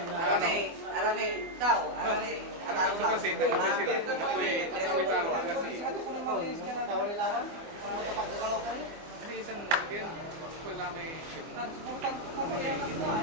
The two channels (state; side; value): late; left; 24 ms